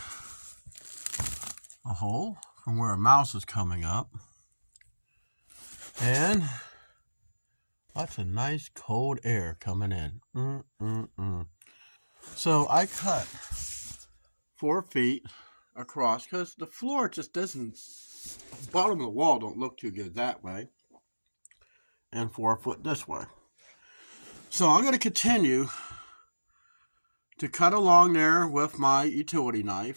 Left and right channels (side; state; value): both; inverted; correlation -1.00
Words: a hole from where a mouse is coming up, and lots of nice cold air coming in. So I cut 4 feet across because the floor just doesn't, the bottom of the wall don't look too good that way, and 4 foot this way. So I'm going to continue to cut along there with my utility